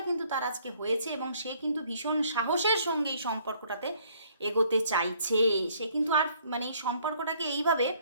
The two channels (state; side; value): inverted; both; correlation -0.62